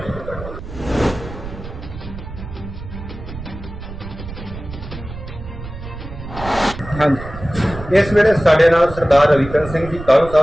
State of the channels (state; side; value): noise; right; rumble, 11 dB below the sound